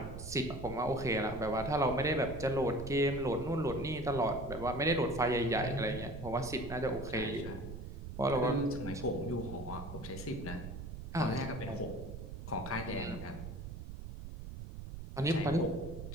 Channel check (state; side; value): noise; right; rumble, 9 dB below the sound